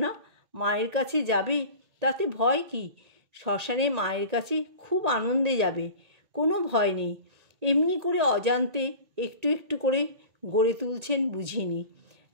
মায়ের কাছে যাবে, তাতে ভয় কি? শ্মশানে মায়ের কাছে খুব আনন্দে যাবে, কোনো ভয় নেই। এমনি করে অজান্তে একটু একটু করে গড়ে তুলছেন বুঝিনি।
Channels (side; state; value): left; late; 1.8 ms